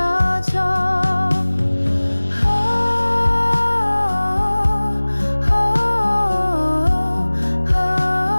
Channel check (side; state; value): both; inverted; correlation -1.00